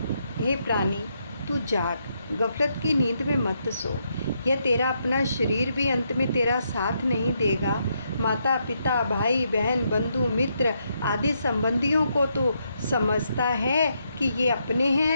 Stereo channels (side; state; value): both; inverted; correlation -0.78